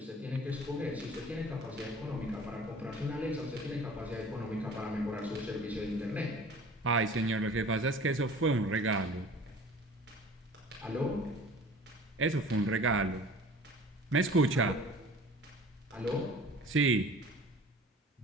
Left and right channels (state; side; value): normal; both; correlation 0.44